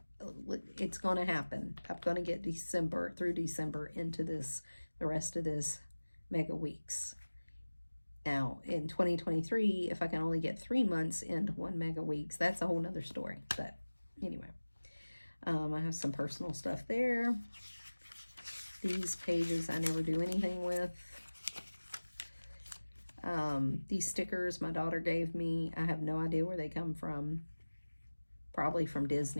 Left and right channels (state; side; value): inverted; both; correlation -1.00